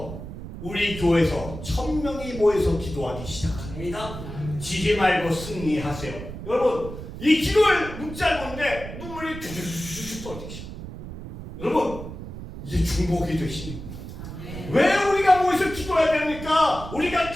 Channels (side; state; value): right; noise; rumble, 10 dB below the sound